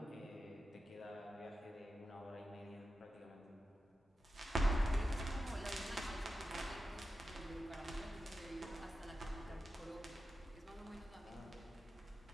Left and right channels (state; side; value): normal; both; correlation 0.91